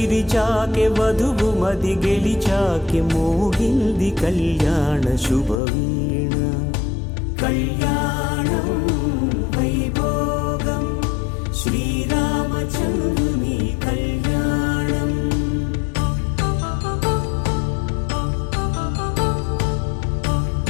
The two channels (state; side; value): drops out; right; at 5.6 s